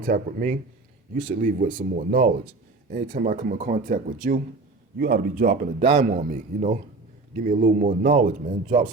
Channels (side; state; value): left; quieter; 3.5 dB